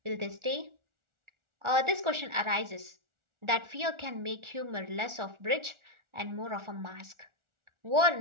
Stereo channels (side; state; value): left; late; 1.4 ms